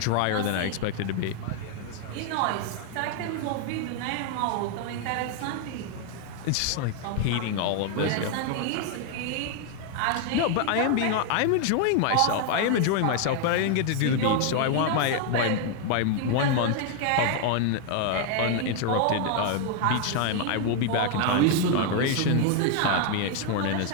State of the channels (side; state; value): both; different; correlation 0.00